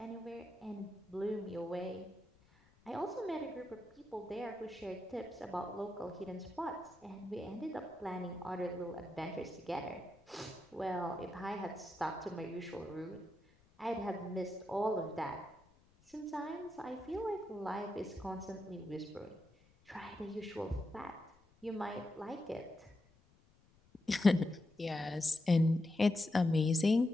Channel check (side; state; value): left; noise; rumble, 30 dB below the sound